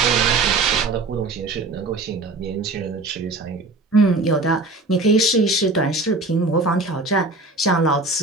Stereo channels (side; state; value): left; quieter; 3.2 dB